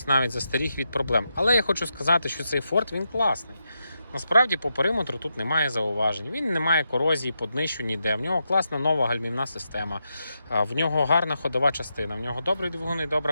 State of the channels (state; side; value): inverted; both; correlation -0.86